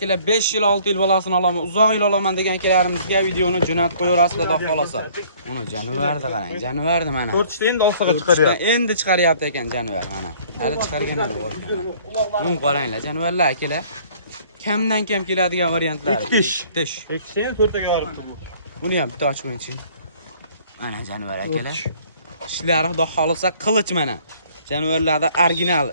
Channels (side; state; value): both; inverted; correlation -0.56